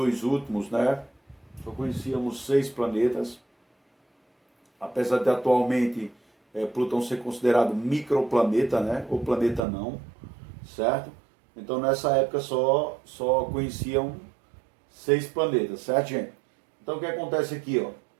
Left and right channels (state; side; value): drops out; left; at 9.7 s